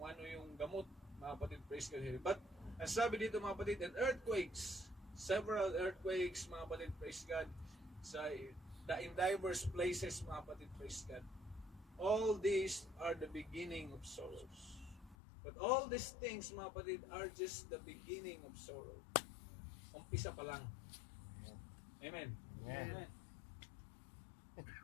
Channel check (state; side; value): drops out; right; at 15.2 s